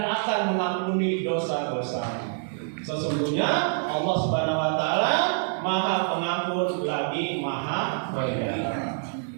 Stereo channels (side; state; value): left; silent; digital silence